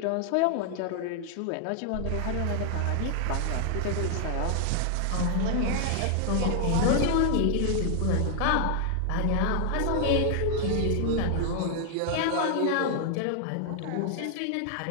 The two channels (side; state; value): both; different; correlation 0.00